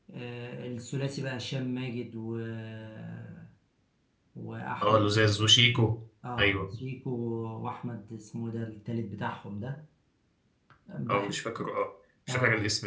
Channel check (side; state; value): both; identical; correlation 1.00